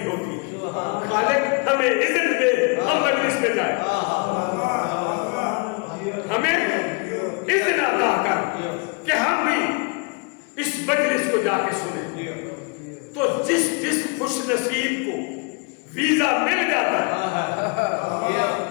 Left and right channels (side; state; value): right; quieter; 33.1 dB